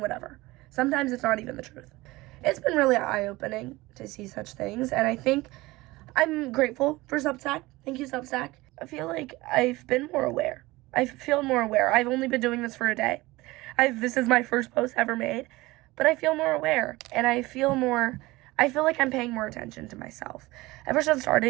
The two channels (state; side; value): quieter; left; 20.3 dB